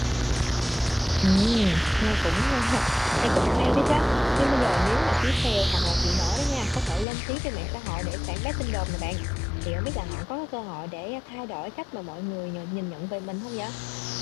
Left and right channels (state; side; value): drops out; right; at 7.1 s